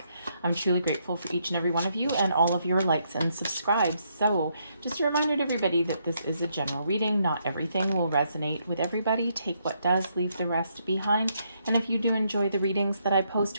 I'm truly grateful for each and every one of you and all of your likes and subscribes. So just a reminder to everybody that this is a general reading. Not everything will resonate with everybody. Take what does, leave the rest behind. And if you do enjoy the readings that I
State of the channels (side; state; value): both; inverted; correlation -0.75